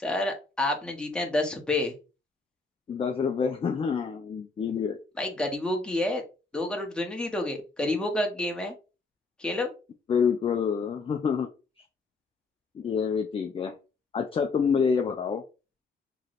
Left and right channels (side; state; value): right; quieter; 4.0 dB